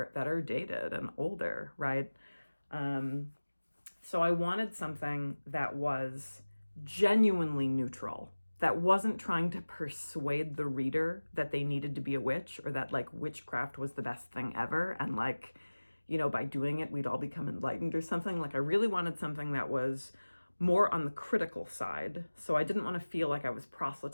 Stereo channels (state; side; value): inverted; both; correlation -1.00